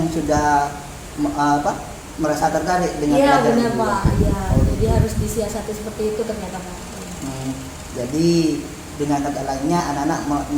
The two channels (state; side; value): identical; both; correlation 1.00